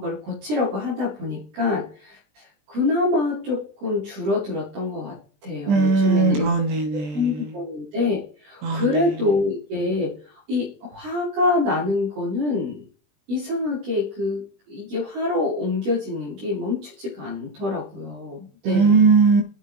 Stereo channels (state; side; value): late; left; 20 ms